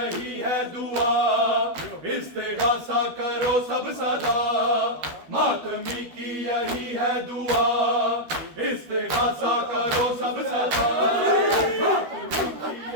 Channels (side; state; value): left; late; 12 ms